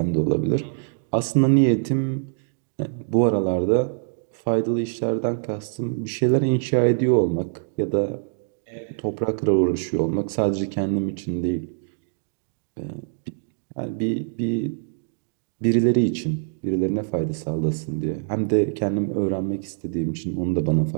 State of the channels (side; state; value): left; silent; digital silence